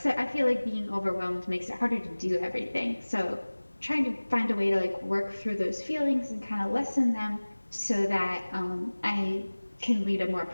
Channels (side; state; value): both; inverted; correlation -1.00